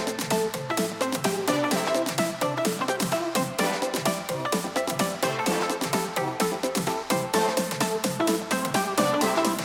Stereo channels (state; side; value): identical; both; correlation 1.00